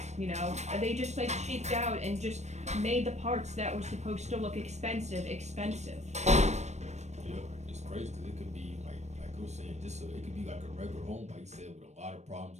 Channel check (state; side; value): late; left; 0.33 ms